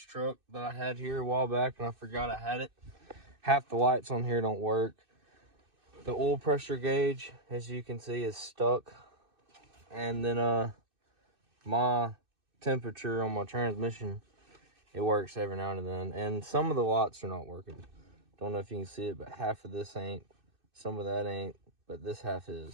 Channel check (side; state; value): left; late; 2.6 ms